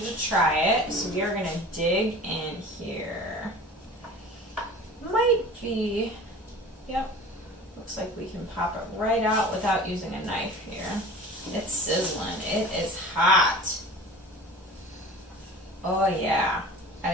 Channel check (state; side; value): normal; both; correlation 0.40